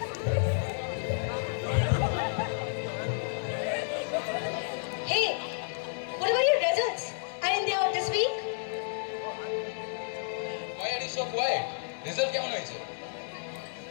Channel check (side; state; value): right; silent; digital silence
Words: Hey, what about your results? Aren't they out this week? Why are you so quiet? Result কেমন হয়েছে?